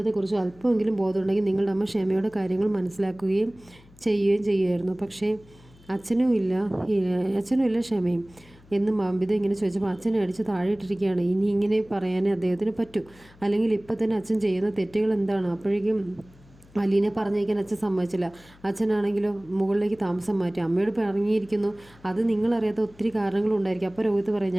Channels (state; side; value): noise; left; hum, 26 dB below the sound